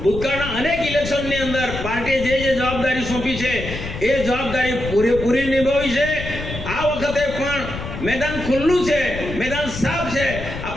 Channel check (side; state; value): left; noise; rumble, 8 dB below the sound